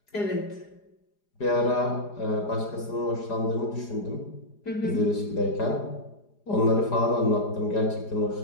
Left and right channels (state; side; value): late; right; 4.9 ms